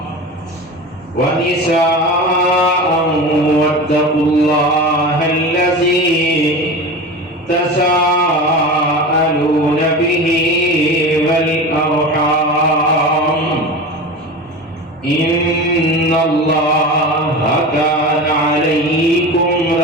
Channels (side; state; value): both; normal; correlation 0.29